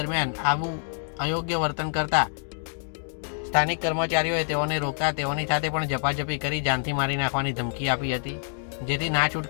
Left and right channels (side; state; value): right; silent; digital silence